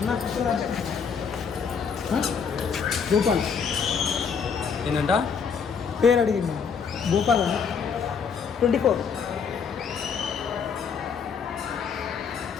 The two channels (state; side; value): quieter; right; 6.3 dB